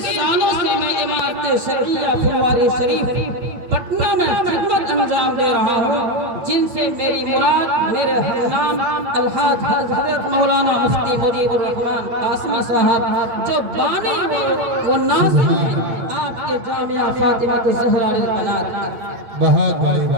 سالوں سے میں عمارت شرعیہ پھلواری شریف پٹنہ میں خدمت انجام دے رہا ہوں، جن سے میری مراد میرے ہمنام الحاج حضرت مولانا مفتی مجیب الرحمن قاسمی صاحب جو بانی و ناظر ہیں آپ کے جامعہ فاطمہ الزہرا للبنات۔ بہت بڑی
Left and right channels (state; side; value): late; left; 8.8 ms